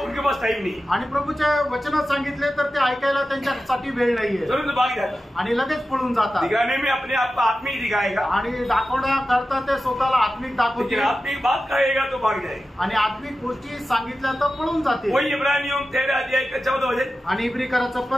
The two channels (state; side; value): normal; both; correlation 0.93